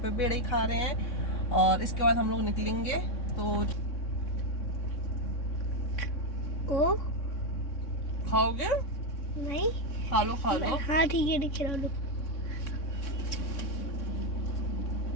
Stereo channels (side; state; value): right; late; 3.6 ms